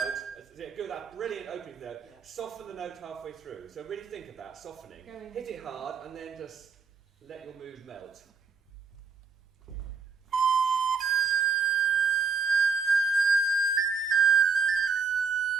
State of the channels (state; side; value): quieter; left; 5.3 dB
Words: Brilliant opening note. Yeah. Soften the note halfway through. So really think of that, softening. Going Hit it hard and then just let your mood melt.